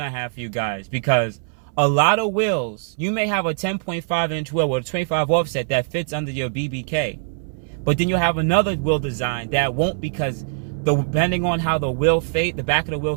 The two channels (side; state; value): left; silent; 63 dB below the other